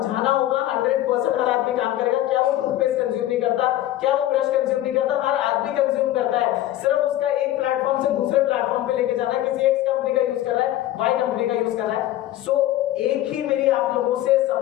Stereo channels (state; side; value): quieter; right; 13.9 dB